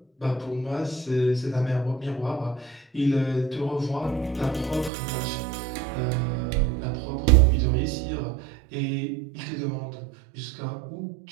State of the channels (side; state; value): left; drops out; at 4.9 s